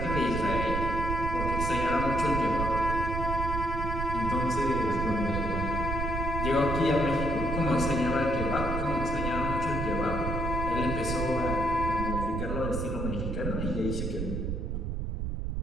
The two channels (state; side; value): noise; right; rumble, 3 dB below the sound